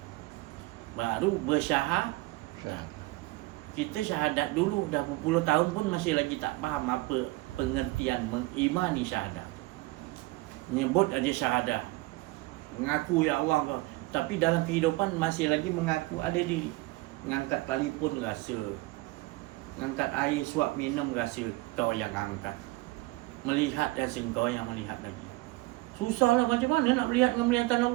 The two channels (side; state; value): left; quieter; 21.2 dB